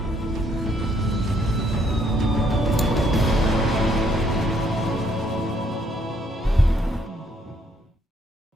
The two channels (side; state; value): both; normal; correlation 0.68